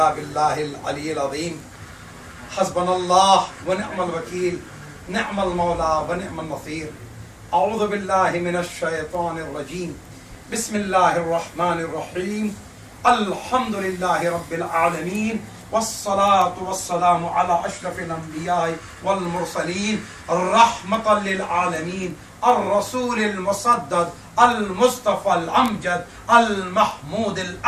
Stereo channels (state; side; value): identical; both; correlation 1.00